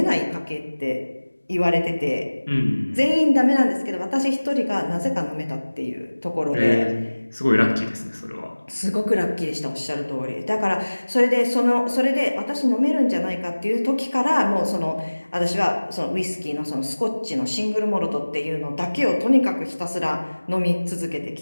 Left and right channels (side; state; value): both; inverted; correlation -1.00